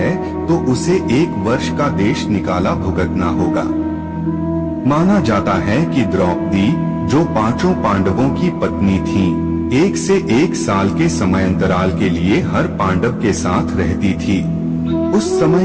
तो उसे 1 वर्ष का देश निकाला भुगतना होगा। माना जाता है कि द्रौपदी, जो 5 पांडवों की पत्नी थी, 1 से 1 साल के समयांतराल के लिए हर पांडव के साथ रहती थी। उस समय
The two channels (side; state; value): both; identical; correlation 1.00